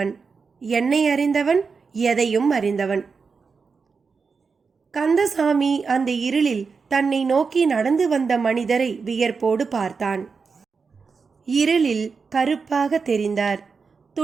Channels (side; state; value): left; quieter; 5.1 dB